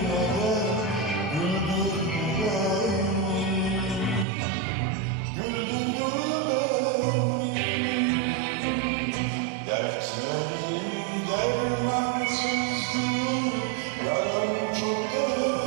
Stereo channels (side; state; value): left; drops out; at 4.2 s